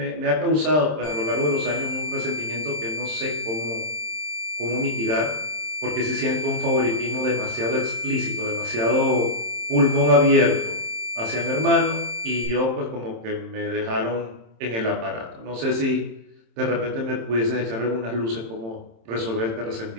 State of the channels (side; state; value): left; late; 27 ms